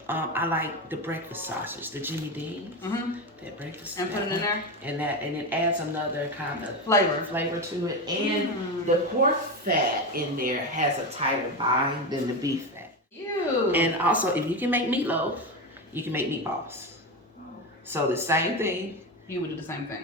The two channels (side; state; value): both; normal; correlation 0.17